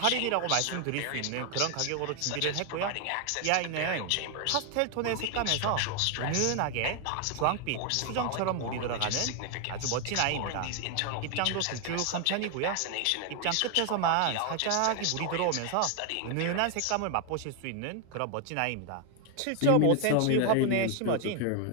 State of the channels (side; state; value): both; different; correlation 0.01